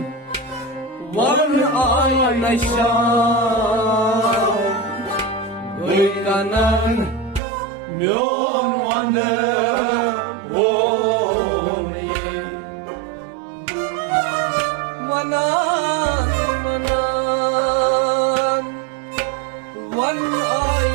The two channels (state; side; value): drops out; left; at 7.4 s